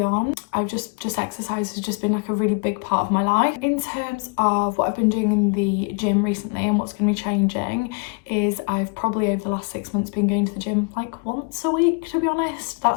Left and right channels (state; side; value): quieter; right; 35.4 dB